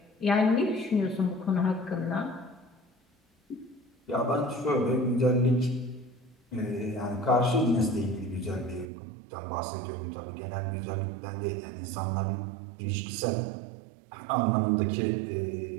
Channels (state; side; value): drops out; left; at 8.9 s